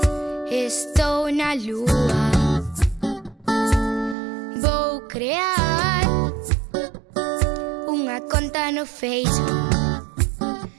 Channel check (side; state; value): left; drops out; at 4.2 s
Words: estou na lúa. Vou crear unha conta no Facebook,